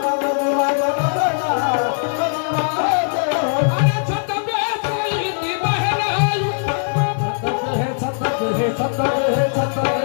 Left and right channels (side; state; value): right; silent; 66 dB below the other